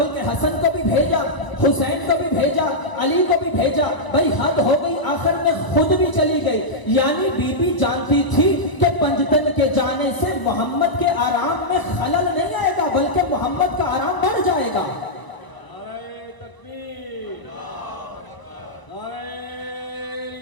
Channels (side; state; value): right; late; 1.0 ms